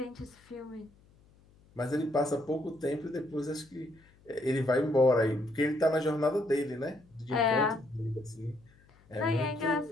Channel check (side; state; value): left; noise; hum, 29 dB below the sound